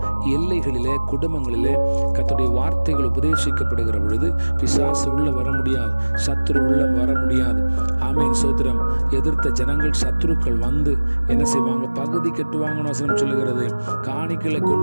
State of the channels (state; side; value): inverted; both; correlation -1.00